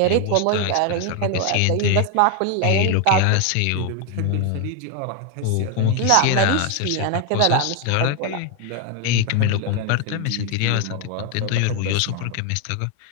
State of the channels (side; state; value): both; different; correlation 0.01